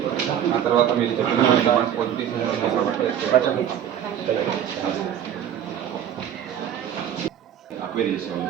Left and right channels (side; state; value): left; quieter; 9.8 dB